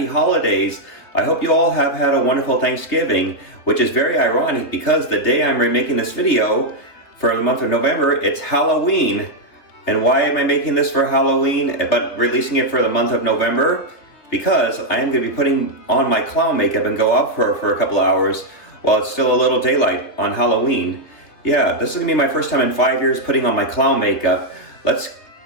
holidays. I hope you all have had a wonderful Thanksgiving, which is very ironic because the day I'm remaking this video for the month of November, it's Halloween. And why am I making this for Halloween, but releasing it for the month of November? Because I am going to be putting on my clown makeup and go out for a couple of hours while it's still a little daylight on Halloween. Yeah, this is going to be my first time in 5 years putting on my clown makeup.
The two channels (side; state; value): right; late; 3.5 ms